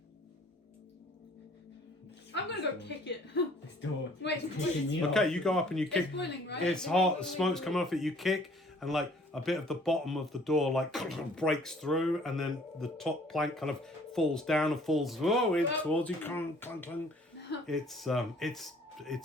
I'm gonna go kick it. This door. Wait, is kicking me off. Okay, you go up and you kick. It's boiling, right? It's hot, smoke's coming off it. You kick, and like a bit of the bottom of the door like breaks through, and then the top plank kind of falls down and falls in towards you. Clunk, clunk, clunk. It's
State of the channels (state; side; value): normal; both; correlation 0.56